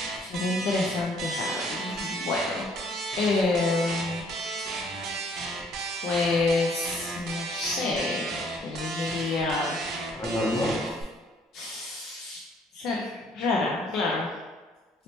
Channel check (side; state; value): both; normal; correlation 0.62